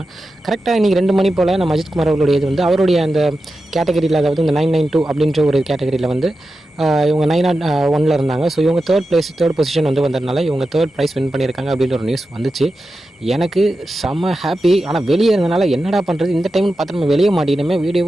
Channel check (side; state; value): both; normal; correlation 0.91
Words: கரெக்டாக இன்றைக்கி 2 மணி போல் நம்ம அஜித்குமார் அவர்களுடைய இது வந்து அவருடைய அந்த கேட்டகரியில், அதாவது இந்த 992 அப்படின்ற ஒரு கேட்டகரியில் வந்து இவங்க 901 இருந்தாங்க. ஸோ இவங்க தேர்ட் பொசிஷன் வந்து வந்ததுனால இவங்க தேர்ட் ப்ரைஸ் வின் பண்ணியிருக்காங்க அப்படின்ற ஒரு நியூஸ் வந்துச்சு. எனக்கு செம்ம ஹாப்பி. ஆனால் வெளியே இருந்தனால என்னடா பண்ணுறது, இந்த டைம்னு பார்த்து நம்ம வெளியே மாட்டினமே,